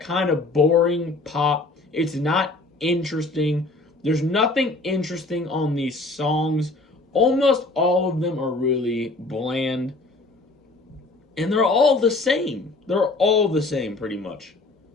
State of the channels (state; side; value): quieter; right; 3.2 dB